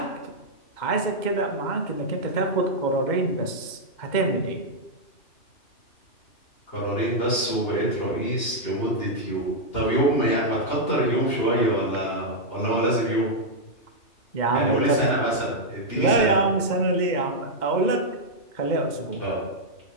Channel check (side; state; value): right; late; 2.8 ms